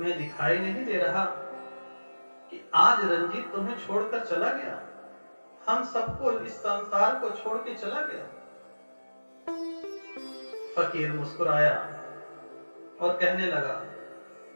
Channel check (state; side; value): inverted; both; correlation -1.00